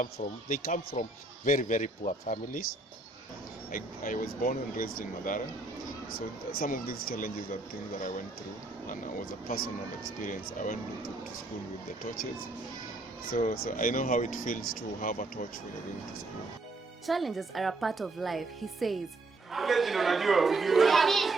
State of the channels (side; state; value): left; quieter; 3.2 dB